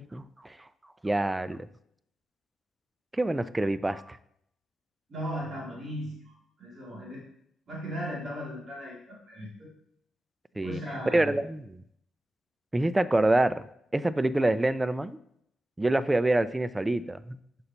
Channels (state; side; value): normal; both; correlation 0.96